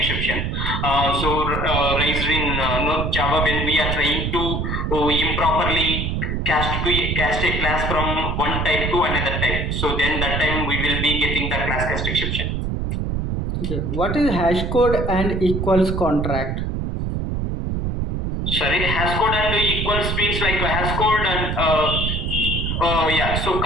Raised in Java when we are trying to improperly cast a class from one type to another type. So then that time we will be getting the class cast exception. Okay. What is hash code and equals contract? Sorry, hash code and equals means like a hash code and yeah. So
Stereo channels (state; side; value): noise; right; rumble, 1 dB below the sound